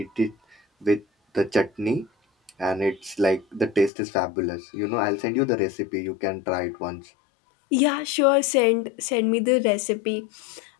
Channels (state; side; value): drops out; right; at 3.9 s